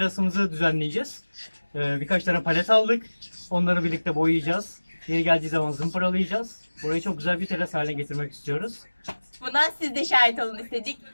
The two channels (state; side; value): inverted; both; correlation -1.00